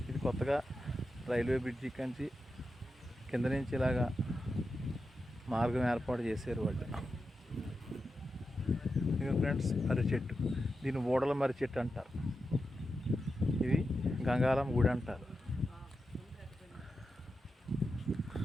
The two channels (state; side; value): normal; both; correlation 0.89